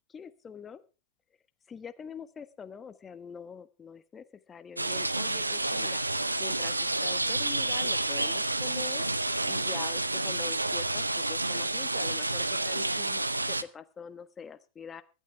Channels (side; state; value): both; inverted; correlation -0.87